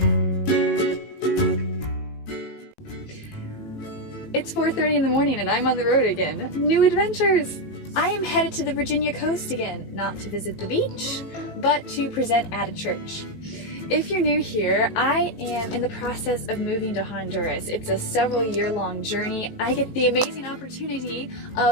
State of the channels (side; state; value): right; late; 18 ms